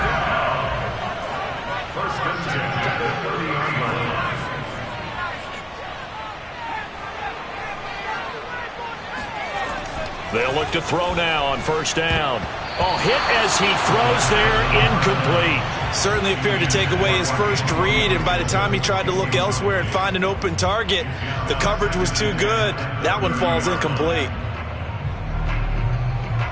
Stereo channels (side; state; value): both; identical; correlation 1.00